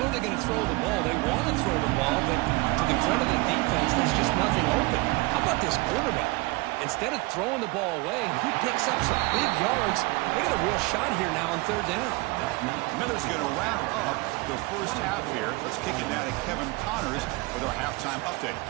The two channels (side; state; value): left; quieter; 24.8 dB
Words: they're going to throw the ball. They want to throw the ball, but to the credit of the defense, there's just nothing open. How about this quarterback? Instead of throwing the ball away, he picks up some big yards. They got a real shot here now on third down. Miller's going to wrap up the first half here. Let's kick it down to Kevin Connors with our halftime update.